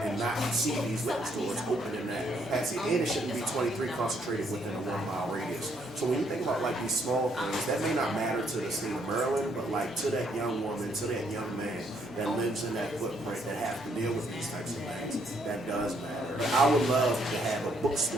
not see these liquor stores open in that capacity. And it shouldn't be 23 concentrated within a 1 mile radius. So when you think about like these small things, that may not matter to the state of Maryland, but like to that young woman, to that young man that lives in that footprint that have to deal with these types of things, that does matter. I would love to have a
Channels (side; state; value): both; normal; correlation 0.70